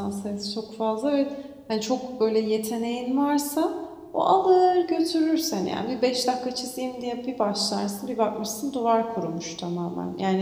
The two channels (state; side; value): identical; both; correlation 1.00